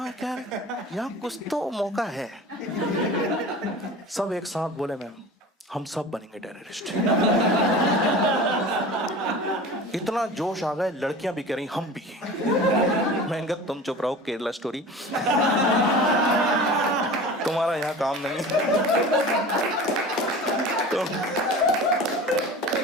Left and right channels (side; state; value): both; normal; correlation 0.36